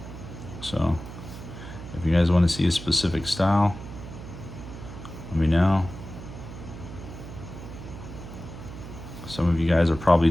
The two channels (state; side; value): noise; right; hum, 12 dB below the sound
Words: So if you guys want to see a specific style, let me know. Some of you guys are probably